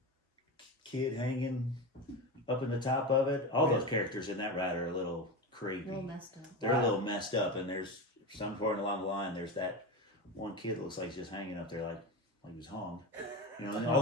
kid hanging up in the top of it. All those characters in that ride are a little creepy. A little messed up. They're a little messed up, and there's some point along the line. There's that one kid that looks like he's just hanging up there like he was hung. And all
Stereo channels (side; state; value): both; normal; correlation 0.21